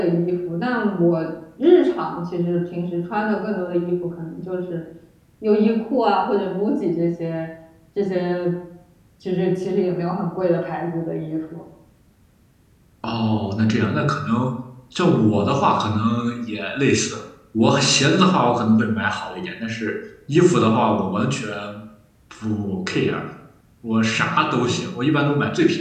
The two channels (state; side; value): identical; both; correlation 1.00